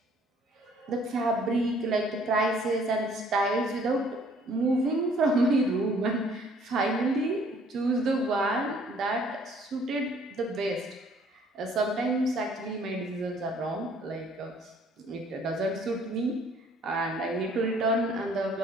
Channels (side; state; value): both; normal; correlation 0.59